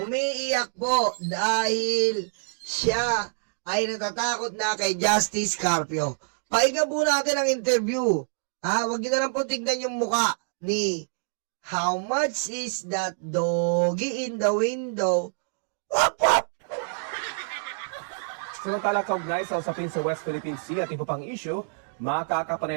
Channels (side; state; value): left; silent; digital silence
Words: Umiiyak po dahil siya ay natatakot na kay Justice Carpio. Pakinggan po natin ang interview. Ha? Huwag niyo na lang po tignan yung muka ni How much is that doggy in the window? Wap, wap! Samantala kaugnay sa usapin sa West Philippine Sea at iba pang issue,